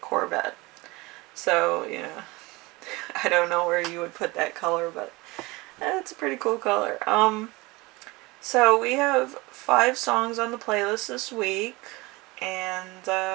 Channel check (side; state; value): left; quieter; 23.2 dB